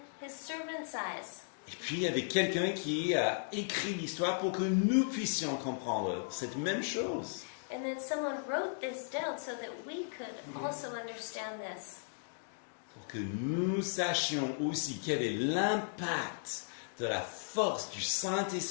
his servant's eyes. Et puis il y avait quelqu'un qui a écrit l'histoire pour que nous puissions comprendre cette même chose. And then someone wrote this down so that we could also understand this. Pour que nous sachions aussi quel est l'impact de la force du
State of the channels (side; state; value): right; silent; digital silence